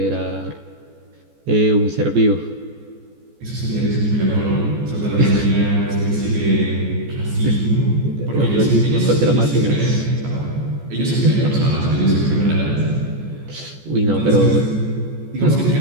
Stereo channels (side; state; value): left; late; 14 ms